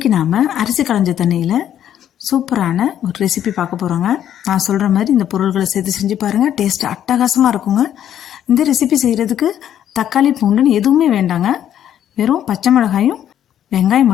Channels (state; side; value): quieter; right; 10.5 dB